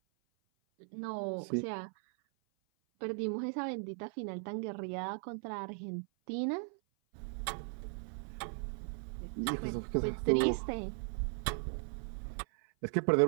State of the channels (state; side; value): silent; left; 53 dB below the other